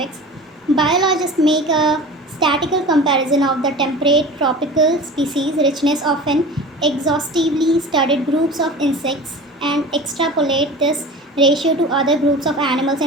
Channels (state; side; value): normal; both; correlation 0.37